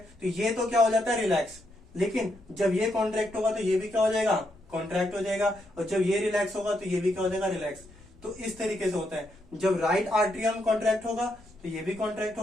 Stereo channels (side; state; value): left; noise; rumble, 25 dB below the sound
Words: तो ये तो क्या हो जाता है, रिलैक्स। लेकिन जब ये कॉन्ट्रैक्ट होगा तो ये भी क्या हो जाएगा, कॉन्ट्रैक्ट हो जाएगा, और जब ये रिलैक्स होगा तो ये भी क्या हो जाएगा, रिलैक्स। तो इस तरीके से होता है, जब राइट आर्टरियम कॉन्ट्रैक्ट होगा तो ये भी कॉन्ट्रैक्ट